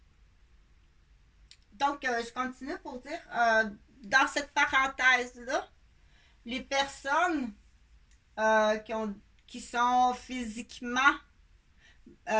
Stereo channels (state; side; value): identical; both; correlation 1.00